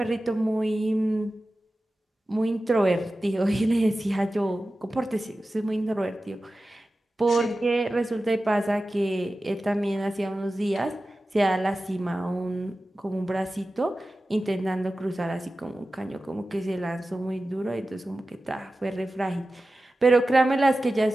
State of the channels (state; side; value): normal; both; correlation 0.95